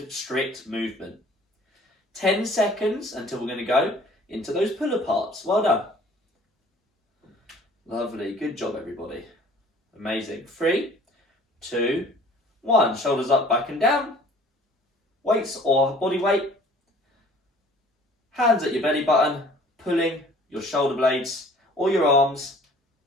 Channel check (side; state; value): both; normal; correlation 0.52